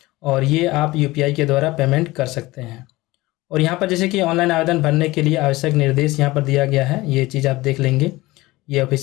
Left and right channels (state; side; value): quieter; right; 19.8 dB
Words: और ये आप UPI के द्वारा पेमेंट कर सकते हैं। और यहाँ पर जैसे कि ऑनलाइन आवेदन भरने के लिए आवश्यक निर्देश यहाँ पर दिया गया है, ये चीज़ आप देख लेंगे। ये